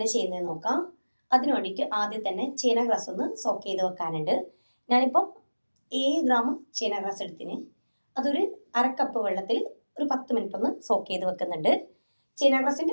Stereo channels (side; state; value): both; inverted; correlation -1.00